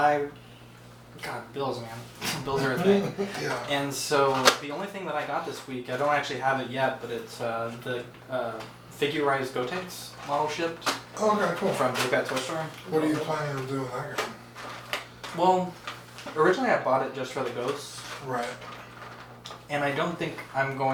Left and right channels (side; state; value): both; identical; correlation 1.00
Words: God, bills, man. Bills are a thing. Yeah. And so, the only thing that I got this week, I don't actually have it yet, but it's the figurized Gotenks model shipped Okay, cool. from Big Bad Toy Store. What are you planning on doing with that game? Well, originally I bought it just for the ghosts, Right. and I don't think I'm